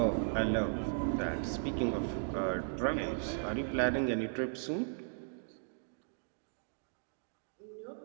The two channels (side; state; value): left; silent; digital silence